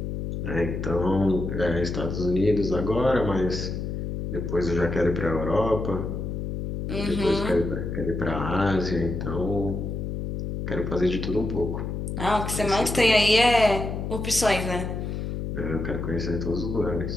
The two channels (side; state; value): left; noise; hum, 4 dB below the sound